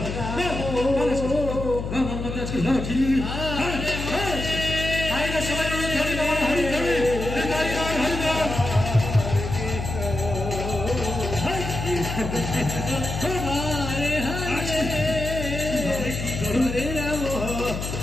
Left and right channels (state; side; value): noise; left; hum, 5 dB below the sound